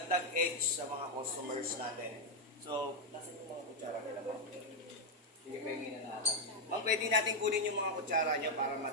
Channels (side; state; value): both; normal; correlation 0.01